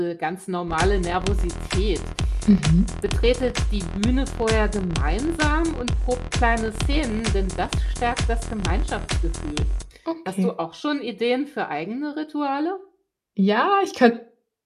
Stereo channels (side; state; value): both; identical; correlation 1.00